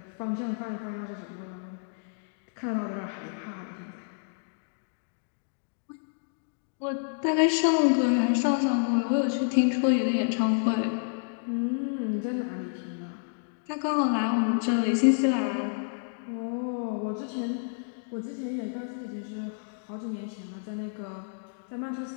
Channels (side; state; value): right; silent; digital silence